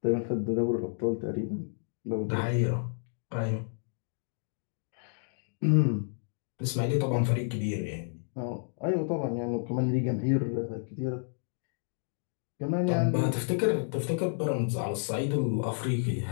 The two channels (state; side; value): silent; right; digital silence